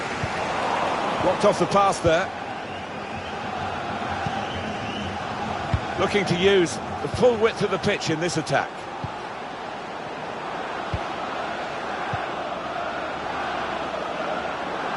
Blocked off the pass there. Looking to use the full width of the pitch in this attack.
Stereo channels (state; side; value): identical; both; correlation 1.00